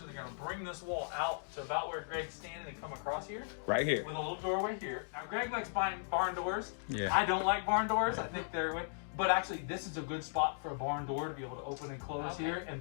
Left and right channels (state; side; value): silent; right; digital silence